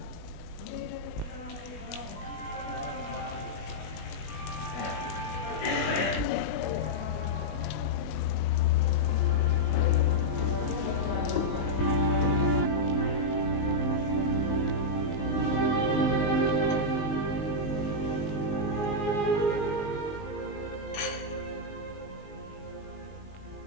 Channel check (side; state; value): right; late; 19 ms